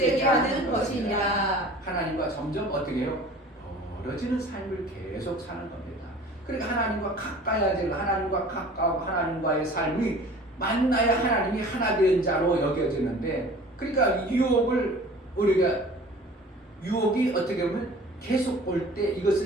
하는 것이니라. 하나님과 점점 어떻게 해요? 멀어지는 삶을 계속 사는 겁니다. 그러니까 하나님과 가까워질, 하나님과 가까워 하나님과의 삶이 만나야 하나님이 하나 된 자로 여겨지는데, 그러니까 유혹이 어떻게 보면 계속 올 때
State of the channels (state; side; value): normal; both; correlation 0.45